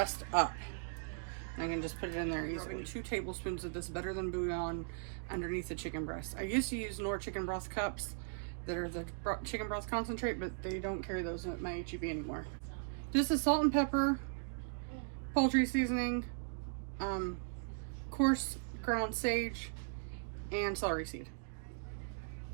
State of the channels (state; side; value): silent; left; digital silence